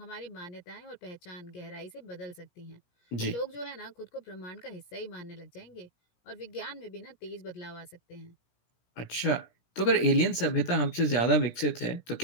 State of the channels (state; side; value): late; right; 17 ms